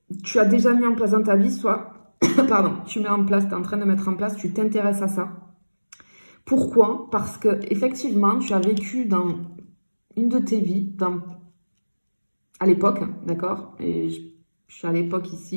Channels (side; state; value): both; inverted; correlation -1.00